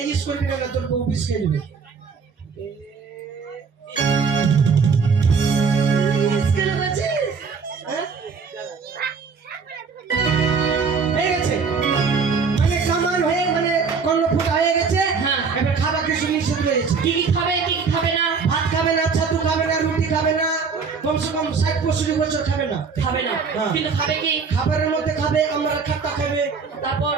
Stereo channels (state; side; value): quieter; left; 5.3 dB